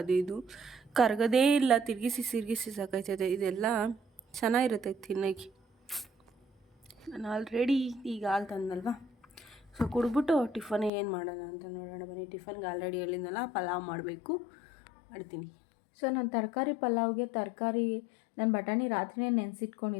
ಅದು ಇದು ಕರಗದೇ ಇಲ್ಲ. ತಿರುಗಿಸಿ ಸಾಕಾಯ್ತದೆ. ಇದೆಲ್ಲ ಚೆನ್ನಾಗಿರುತ್ತೆ ತಿನ್ನೋಕ್ಕೆ. ನಾನು ಆಲ್ರೆಡಿ ಈಗ ಹಾಲು ತಂದಲ್ವ, ಸೊ ಕುಡಿದ್ಬಿಟ್ಟು ಟಿಫನ್ ಏನು ಮಾಡೋಣ ಅಂತ ನೋಡೋಣ ಬನ್ನಿ. ಟಿಫನ್ಗೆ ಆಲ್ರೆಡಿ ಹೇಳಿದ್ನಲ್ಲ ಪಲಾವ್ ಮಾಡ್ತೀನಿ. ಸೊ ನಾನು ತರಕಾರಿ ಪಲಾವ್ಗೆ ನಾನು ಬಟಾಣಿ ರಾತ್ರಿನೇ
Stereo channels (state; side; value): drops out; right; at 10.9 s